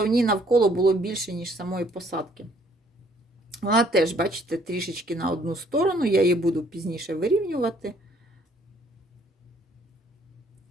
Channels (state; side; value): normal; both; correlation 0.63